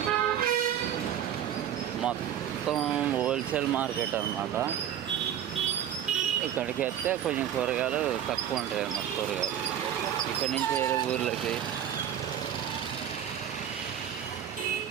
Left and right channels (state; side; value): quieter; left; 10.0 dB